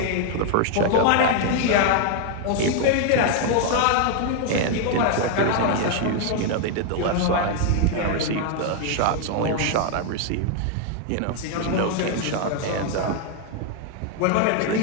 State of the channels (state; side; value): different; both; correlation 0.00